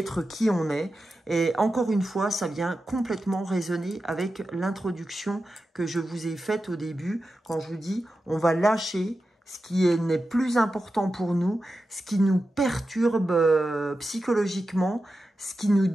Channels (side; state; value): both; normal; correlation 0.91